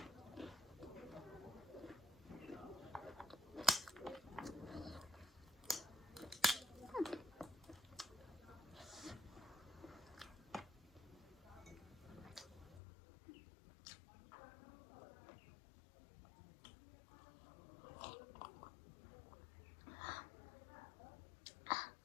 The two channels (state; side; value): drops out; right; at 12.8 s